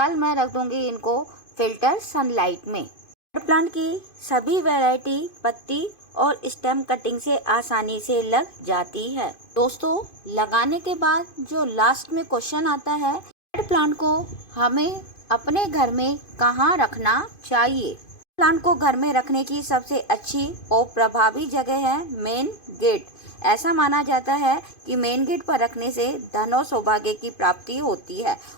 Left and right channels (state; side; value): late; right; 2.5 ms